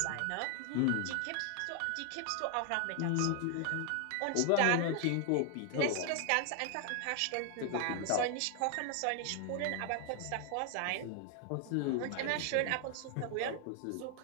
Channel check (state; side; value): different; both; correlation 0.00